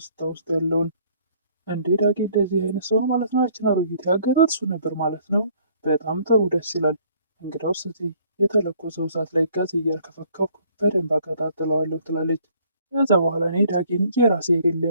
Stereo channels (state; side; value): inverted; both; correlation -0.60